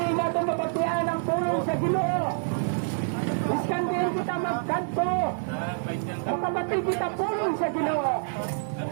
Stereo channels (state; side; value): silent; left; digital silence